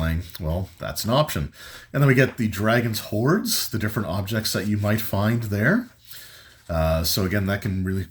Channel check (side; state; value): both; identical; correlation 1.00